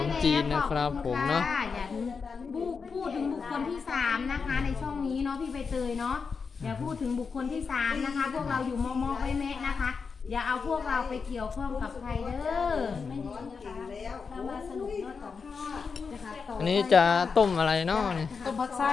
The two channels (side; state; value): right; quieter; 5.3 dB